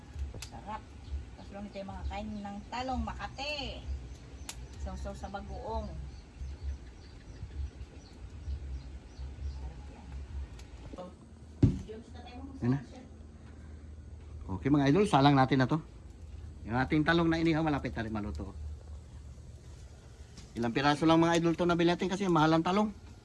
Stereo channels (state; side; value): identical; both; correlation 1.00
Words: Sarap. Tapos lang ito yung mga kain ng talong Makate. Sausaw sa bagoong. Yan na. Okay mga idol, salang natin na to. Yung ating talong na inihaw, malapit na rin maluto. Ilang piraso lang mga idol to nabili natin kasi mahal ang talong.